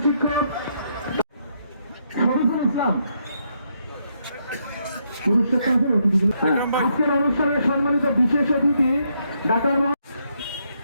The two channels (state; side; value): inverted; both; correlation -0.76